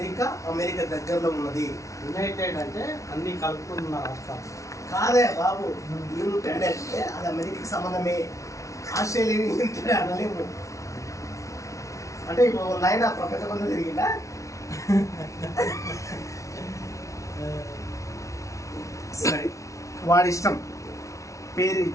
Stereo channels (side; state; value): right; late; 0.15 ms